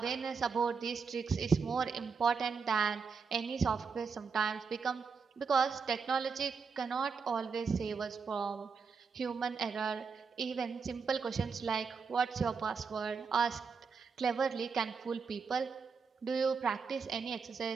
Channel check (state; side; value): quieter; left; 5.5 dB